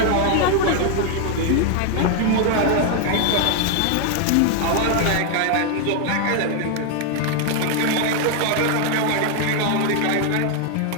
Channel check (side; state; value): both; different; correlation 0.01